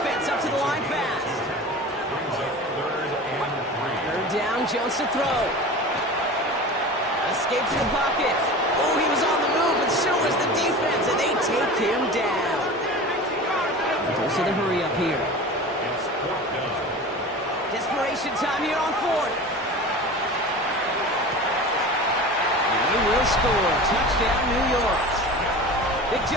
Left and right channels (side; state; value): both; normal; correlation 0.34